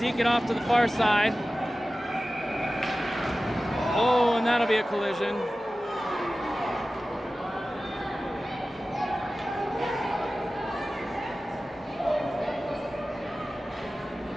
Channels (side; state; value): both; normal; correlation 0.96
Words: Deke it off to the far side. Oh, and that'll be a collision.